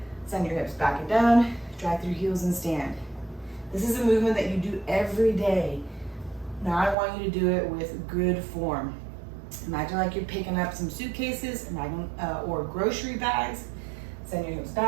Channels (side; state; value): left; drops out; at 7.0 s